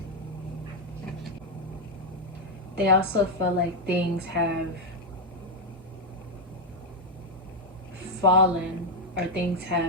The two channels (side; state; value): both; normal; correlation 0.02